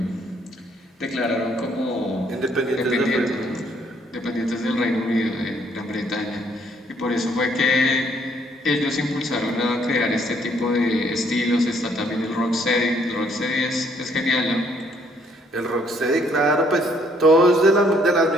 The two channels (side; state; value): both; normal; correlation 0.66